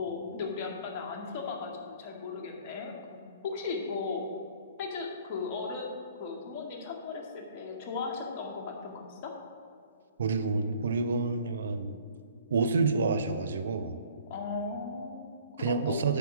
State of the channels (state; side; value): inverted; both; correlation -0.54